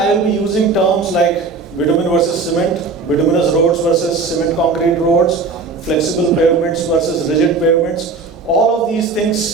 will be using terms like bitumen versus cement, bituminous roads versus cement concrete roads, flexible pavements versus rigid pavements. All of these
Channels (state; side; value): quieter; left; 4.2 dB